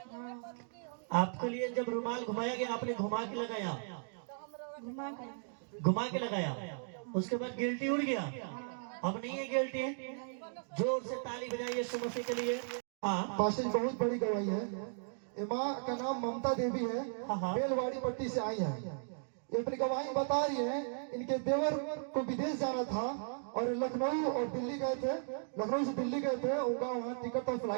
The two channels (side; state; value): left; silent; digital silence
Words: आपके लिए जब रुमाल घुमाया गया, आपने घुमा के लगाया, घुमा के लगाया, उसके बाद गिल्टी उड़ गया। अब नहीं है गिल्टी। जोर से ताली बजाइए यीशु मसीह के लिए। पास्टर जी बहुत बड़ी गवाही है। माँ का नाम ममता देवी है, बेलवाड़ी पट्टी से आई है। ये अपनी गवाही बता रही है, इनके देवर को विदेश जाना था और लखनऊ और दिल्ली गए थे, लखनऊ से दिल्ली गए थे, उनका वहाँ टिकट का